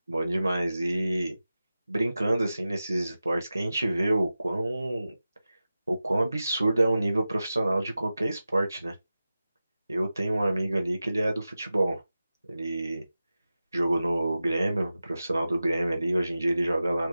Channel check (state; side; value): inverted; both; correlation -0.94